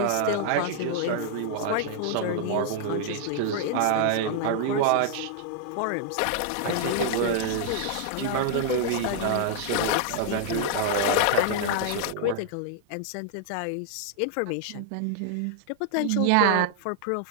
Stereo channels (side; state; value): both; different; correlation -0.01